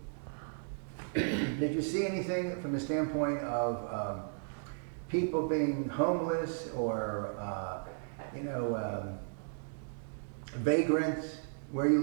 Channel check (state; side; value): silent; left; digital silence